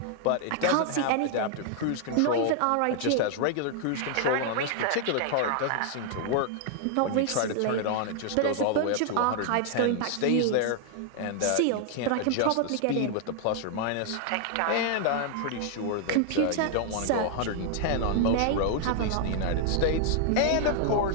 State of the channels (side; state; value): both; different; correlation 0.00